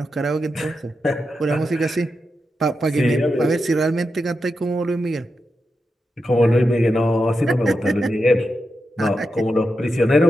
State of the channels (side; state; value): both; normal; correlation 0.88